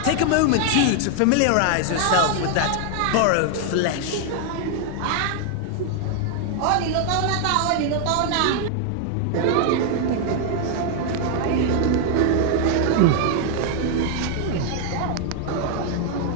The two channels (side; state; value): both; different; correlation 0.00